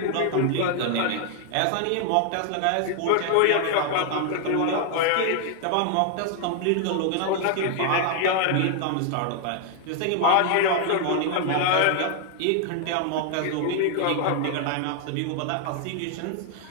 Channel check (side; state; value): both; different; correlation 0.00